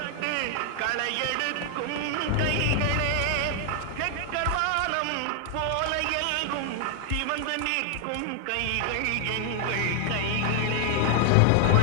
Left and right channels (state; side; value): different; both; correlation 0.00